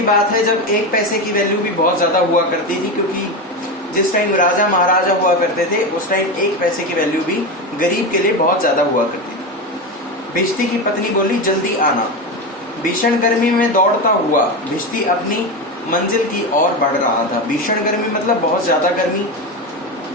बात है जब एक पैसे की वैल्यू भी बहुत ज्यादा हुआ करती थी, क्योंकि जिस टाइम राजा महाराजा हुआ करते थे उस टाइम एक पैसे की वैल्यू भी गरीब के लिए बहुत ज्यादा हुआ करती थी. भिष्टी की पत्नी बोली, जल्दी आना. भीषण गर्मी में दौड़ता हुआ भिष्टी अपनी मंजिल की ओर बढ़ रहा था. भीषण गर्मी मतलब बहुत ज्यादा गर्मी.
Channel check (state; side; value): normal; both; correlation 0.17